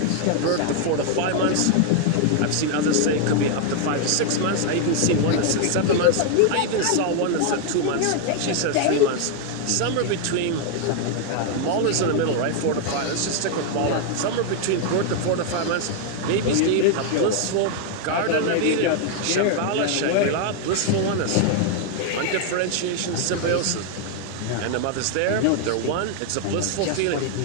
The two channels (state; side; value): different; both; correlation 0.00